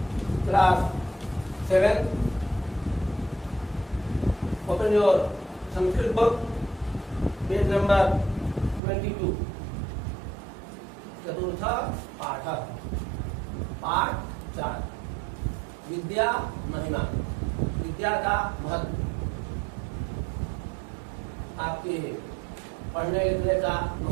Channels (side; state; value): left; drops out; at 8.8 s